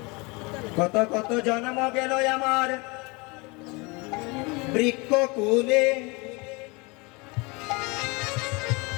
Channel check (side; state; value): right; quieter; 27.3 dB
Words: কত কত জন্ম গেল আমার বৃক্ষ কুলে,